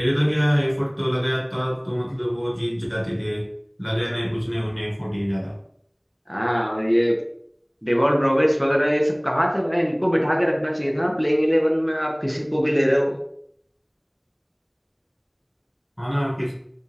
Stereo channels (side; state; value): both; identical; correlation 1.00